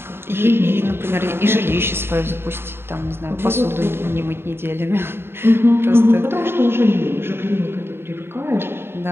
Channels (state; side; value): late; left; 0.11 ms